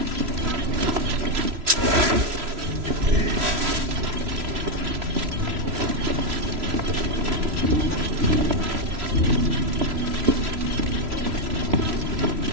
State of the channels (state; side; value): late; left; 3.0 ms